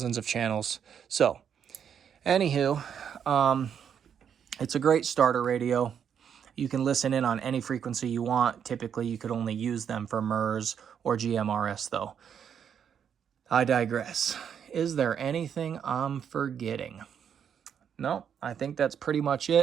of channels. So, anywho, it's a great starter radio. You can listen in on any frequency you want. Typically, you could only use them for MERS or GMRS, though. I digress. Is there anything I'm forgetting? No, I think that's pretty much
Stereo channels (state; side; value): quieter; left; 8.1 dB